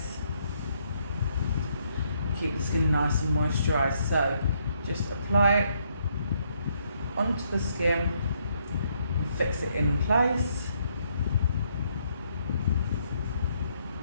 keep the skin nice and moisturised. So just apply it onto the skin and fix it in place.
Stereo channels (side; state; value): both; inverted; correlation -0.72